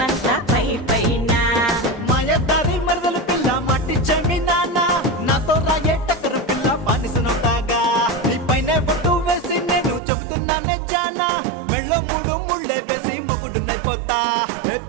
పై పైన మాయదారి మరదల పిల్ల మట్టి జమీనానా నాతో రాయే టక్కరు పిల్ల బానిసనవుతాగా నీ పైన బొట్టు వేసి నేను చెబుతున్నానే జానా మెళ్ళో మూడు ముళ్ళే వేసి మొగుడునైపోతా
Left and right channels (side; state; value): left; drops out; at 10.0 s